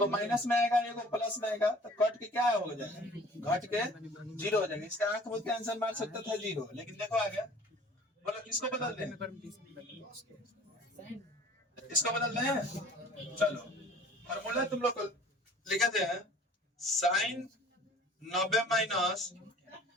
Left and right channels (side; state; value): both; normal; correlation 0.48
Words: माइनस में आएगा, एगो प्लस में आएगा, तो कट के क्या हो जाएगा? घट के जीरो हो जाएगा। इसका आंख बोल के आंसर मार सकता था जीरो, लेकिन देखो आ गया। बोलो किसको बदल दें? इसको बदल दें। चलो फॉर्मूला तुम लोग को लिखते हैं, sine 90 minus